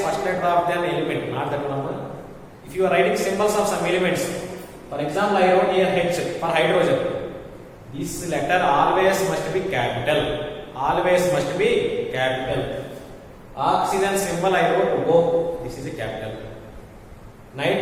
element. Not that number. If you are writing symbols of some elements, for example, I wrote here H for hydrogen. This letter always must be capital. Oxygen symbol I wrote O. This is a capital.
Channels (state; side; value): identical; both; correlation 1.00